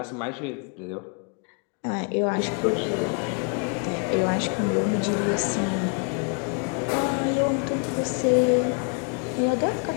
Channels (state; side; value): quieter; right; 38.9 dB